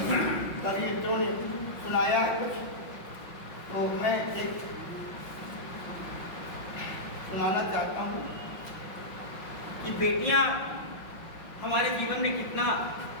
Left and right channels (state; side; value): late; right; 5.7 ms